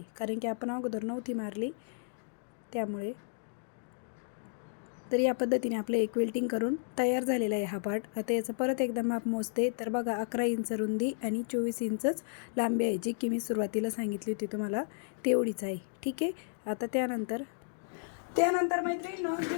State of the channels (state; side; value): silent; right; digital silence